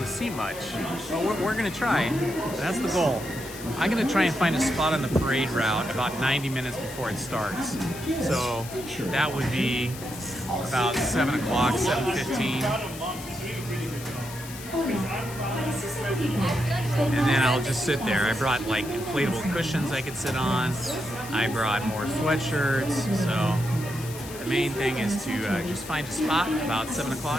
see much. But we're gonna try. That's the goal. I'm gonna try and find a spot on the parade route about 90 minutes before it starts. So that would be about 7 o'clock, 7:15. And then I'll just sit there. I brought like inflatable cushions I could sit on. I brought more sweatshirts. So the main thing is to just find a spot about 7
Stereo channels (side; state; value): left; noise; hiss, 13 dB below the sound